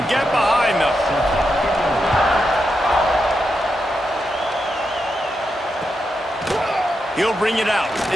get behind them. He'll bring it out.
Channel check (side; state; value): both; normal; correlation 0.85